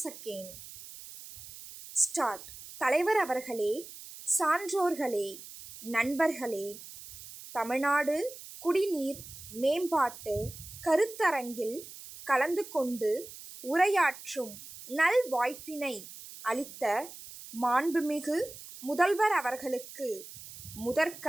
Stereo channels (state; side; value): noise; right; hiss, 15 dB below the sound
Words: seconds. Start. தலைவர் அவர்களே, சான்றோர்களே, நண்பர்களே, தமிழ்நாடு குடிநீர் மேம்பாட்டு கருத்தரங்கில் கலந்து கொண்டு உரையாற்றும் நல் வாய்ப்பினை அளித்த மாண்புமிகு முதல்வர் அவர்களுக்கு